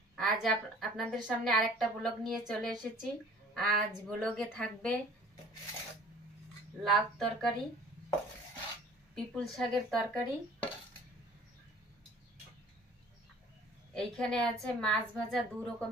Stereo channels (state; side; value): normal; both; correlation 0.50